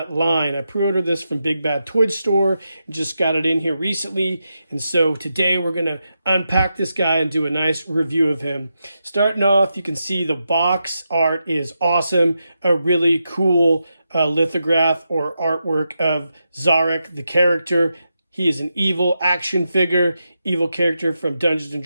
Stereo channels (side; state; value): both; inverted; correlation -0.87